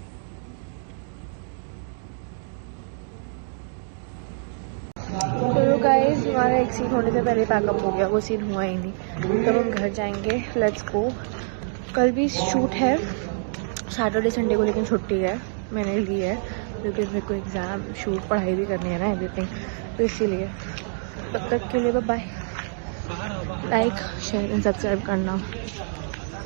तो गाइस हमारा एक सीन होने से पहले पैकअप हो गया, वो सीन हुआ ही नहीं। तब हम घर जाएंगे। Let's go. कल भी शूट है, सैटरडे संडे को, लेकिन छुट्टी है मैंने ली है क्योंकि मेरे को एग्ज़ाम शूट पढ़ाई भी करनी है ना, एवरीथिंग, तो इसीलिए। तब तक के लिए bye. Like share and subscribe करना।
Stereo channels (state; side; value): silent; left; digital silence